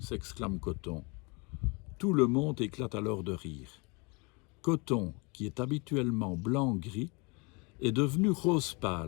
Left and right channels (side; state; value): right; quieter; 29.9 dB